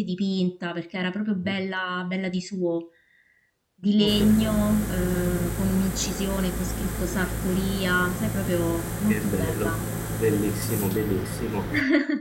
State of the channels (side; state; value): both; identical; correlation 1.00